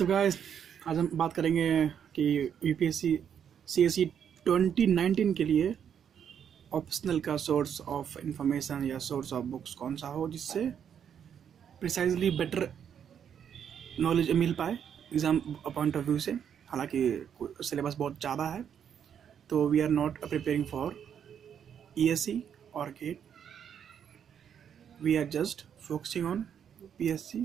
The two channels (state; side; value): quieter; left; 8.4 dB